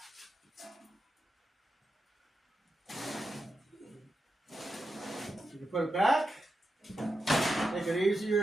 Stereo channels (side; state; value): both; normal; correlation 0.88